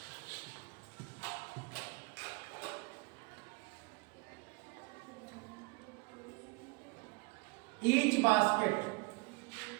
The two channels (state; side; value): quieter; left; 28.3 dB